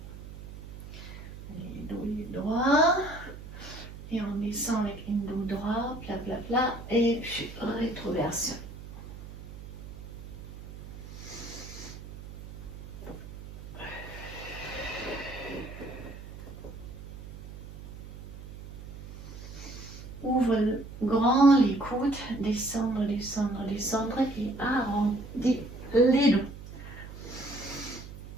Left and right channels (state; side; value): noise; right; hum, 13 dB below the sound